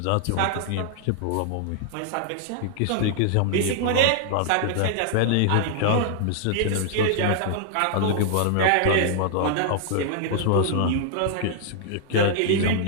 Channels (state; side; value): different; both; correlation -0.01